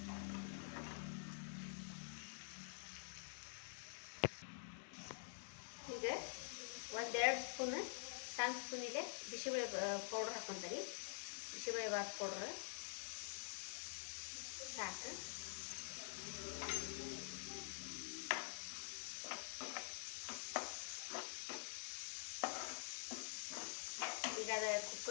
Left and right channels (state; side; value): silent; right; digital silence